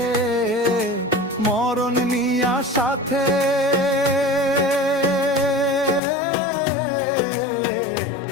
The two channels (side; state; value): right; drops out; at 6.0 s